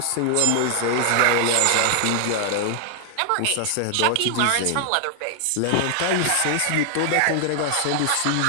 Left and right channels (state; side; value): different; both; correlation 0.00